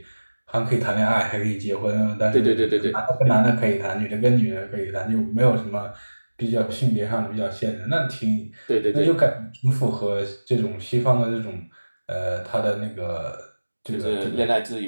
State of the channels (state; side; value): inverted; both; correlation -1.00